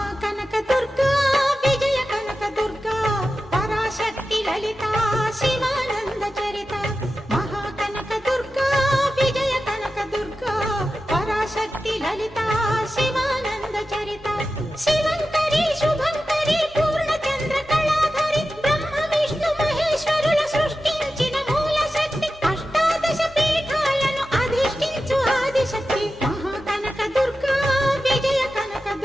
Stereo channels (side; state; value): both; normal; correlation 0.92